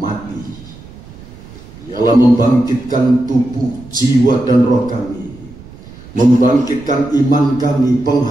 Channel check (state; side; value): noise; right; rumble, 19 dB below the sound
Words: ialah membangkitkan tubuh, jiwa, dan roh kami, membangkitkan iman kami,